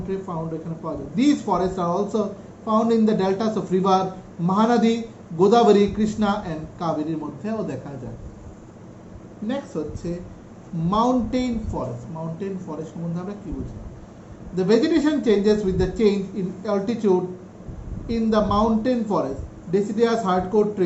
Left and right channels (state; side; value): identical; both; correlation 1.00